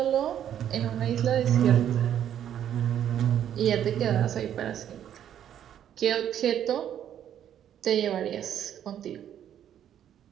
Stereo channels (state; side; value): quieter; left; 10.1 dB